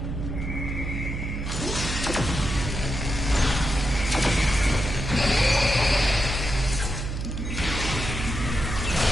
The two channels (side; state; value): right; noise; hum, 4 dB below the sound